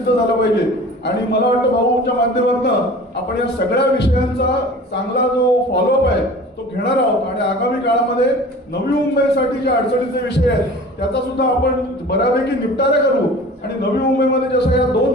झालं पाहिजे। आणि मला वाटतं भाऊच्या माध्यमातून आपण या सगळ्या विषयांचा चांगला जो फॉलोअप आहे तो घेणार आहोत आणि आगामी काळामध्ये नवी मुंबईसाठी जे अडचणीचे विषय आहेत त्याचा सुद्धा आपण बऱ्यापैकी निपटारा करू। आणि नवी मुंबईमध्ये जसं या 2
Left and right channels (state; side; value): normal; both; correlation 0.41